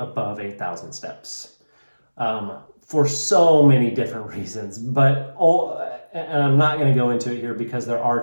8,000 steps. For so many different reasons, and I'm not going to go into it here because there are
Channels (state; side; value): inverted; both; correlation -1.00